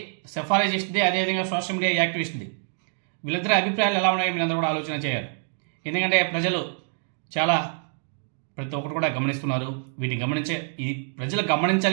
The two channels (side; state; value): left; silent; 61 dB below the other